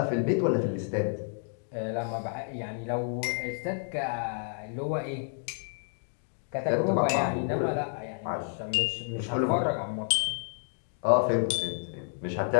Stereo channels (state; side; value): silent; right; 58 dB below the other